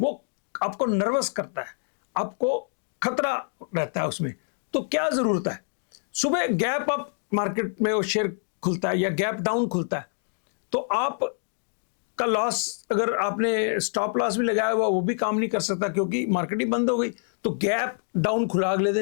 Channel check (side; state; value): right; silent; digital silence